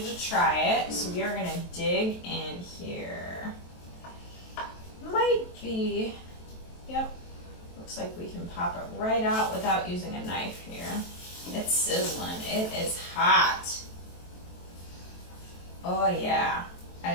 to try it. So we are going to dig in here. Might be, yep, looks like we can pop it right out without using a knife here. It's sizzling. It is hot. Oh yeah.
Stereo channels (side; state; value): right; late; 23 ms